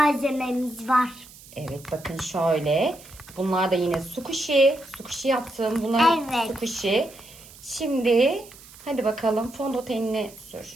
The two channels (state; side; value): noise; right; hiss, 20 dB below the sound